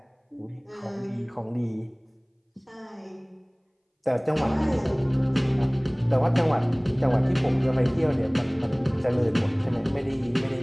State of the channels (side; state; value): both; identical; correlation 1.00